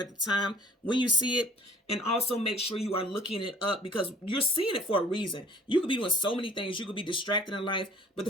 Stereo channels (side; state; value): both; normal; correlation 0.53